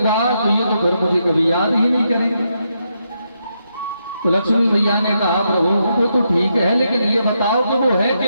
तो ये तो फिर मुझे कभी याद ही नहीं करेंगे। तो लक्ष्मी मैया ने कहा, प्रभु वो तो ठीक है, लेकिन ये बताओ कि वो है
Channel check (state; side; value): inverted; both; correlation -0.81